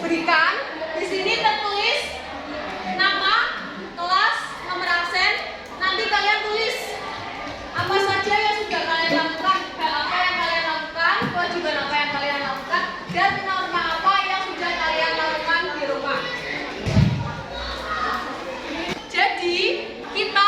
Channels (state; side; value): identical; both; correlation 1.00